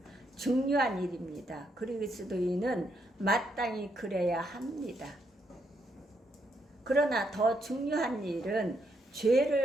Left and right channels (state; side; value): normal; both; correlation 0.76